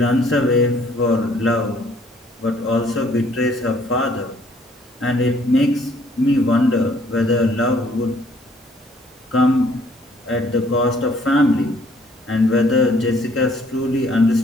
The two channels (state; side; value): normal; both; correlation 0.62